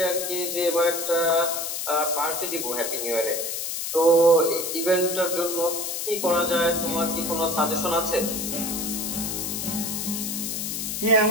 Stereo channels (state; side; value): noise; left; hiss, 3 dB below the sound